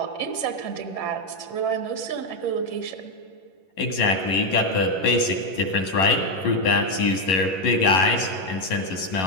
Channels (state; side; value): late; right; 11 ms